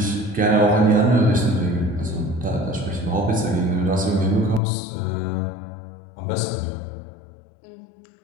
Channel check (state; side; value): drops out; right; at 4.6 s